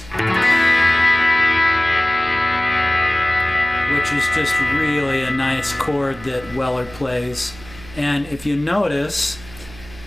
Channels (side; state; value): right; noise; hum, 19 dB below the sound